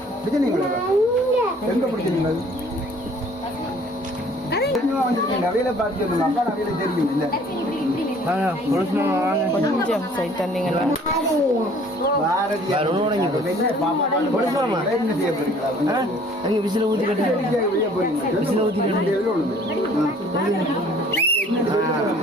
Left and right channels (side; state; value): both; normal; correlation 0.55